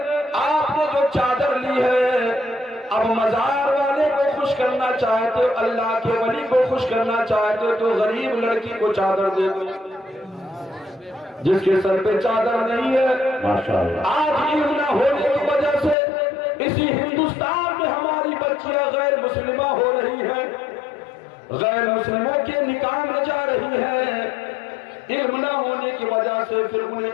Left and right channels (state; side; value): drops out; right; at 16.0 s